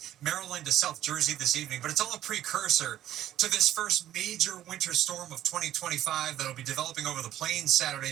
Maryland to South Jersey this evening, but it's all a precursor to this first major winter storm of 2025 that'll be developing over the plains Saturday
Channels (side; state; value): left; quieter; 12.6 dB